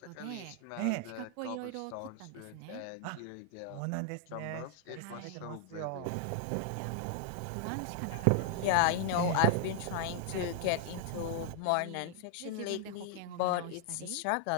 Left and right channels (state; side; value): different; both; correlation 0.00